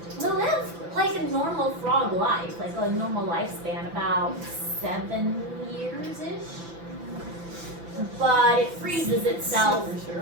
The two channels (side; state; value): left; late; 6.0 ms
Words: They'll live like a normal frog life, like a normal lifespan, about 7 years-ish. But it freezes itself